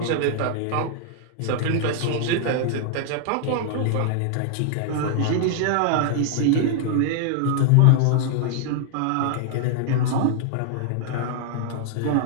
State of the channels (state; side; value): different; both; correlation 0.00